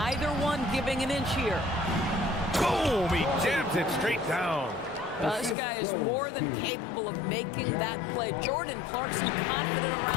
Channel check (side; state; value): right; drops out; at 5.6 s